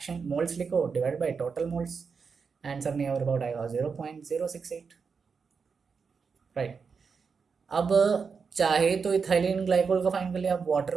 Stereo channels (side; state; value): left; quieter; 5.5 dB